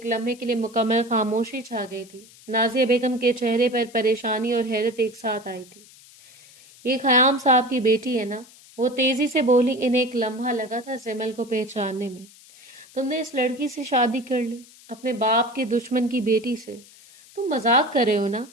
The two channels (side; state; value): left; noise; hiss, 23 dB below the sound